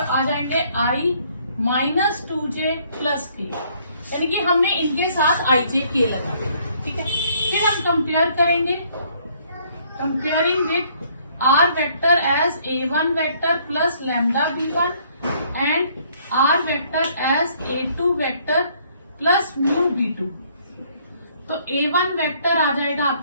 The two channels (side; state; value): both; inverted; correlation -0.64